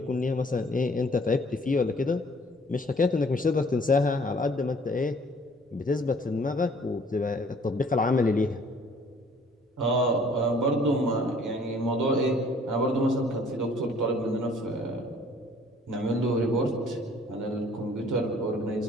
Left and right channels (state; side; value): normal; both; correlation 0.56